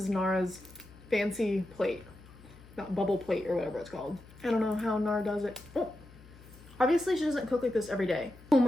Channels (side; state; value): left; noise; hum, 21 dB below the sound